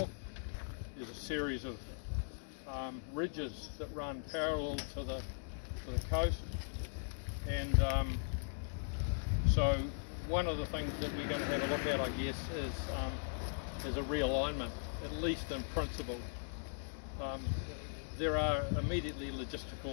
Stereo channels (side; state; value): right; silent; digital silence